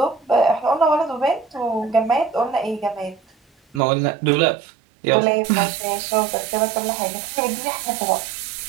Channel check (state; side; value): drops out; left; at 3.8 s